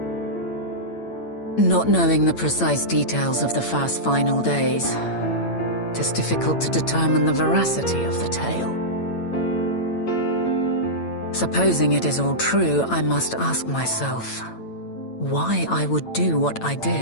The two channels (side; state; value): right; late; 8.9 ms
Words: Not knowing the precise details of the first final days, it is difficult to determine the veracity of the tale. Supposing it is all true, I must ask myself why I would do what I